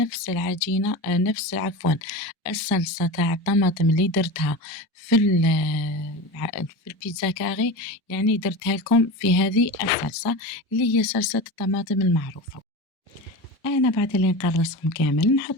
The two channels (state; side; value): normal; both; correlation 0.27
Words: العجينة، نفس عفوا الصلصة تاع الطماطم اللي درتها في البيتزا كاري، يعني درتها لكم في هذه الصلصة اللي هي صلصة الطماطم المعروفة. أنا بعد اللي نقرصهم كامل